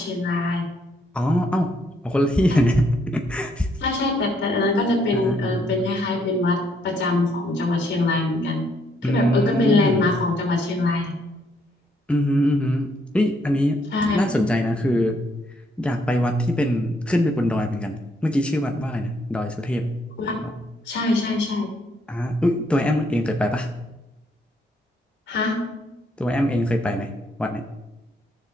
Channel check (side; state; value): both; normal; correlation 0.71